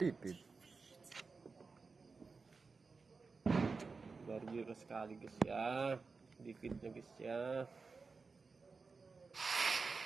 Baru sekali guys ya. Dikitnya guys ya.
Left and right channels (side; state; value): left; quieter; 4.5 dB